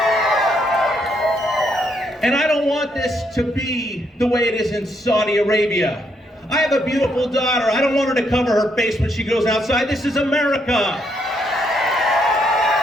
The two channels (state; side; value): normal; both; correlation 0.75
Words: And I don't want this to be the way it is in Saudi Arabia. I have a beautiful daughter. I don't want her to cover her face when she goes outside. This is America.